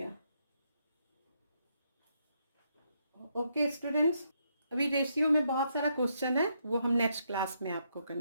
ओके स्टूडेंट्स, अभी रेशियो में बहुत सारा क्वेश्चन है, वो हम नेक्स्ट क्लास में आपको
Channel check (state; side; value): inverted; both; correlation -0.77